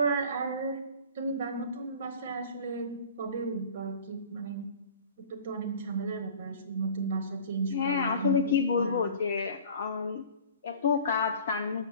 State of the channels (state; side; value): inverted; both; correlation -0.44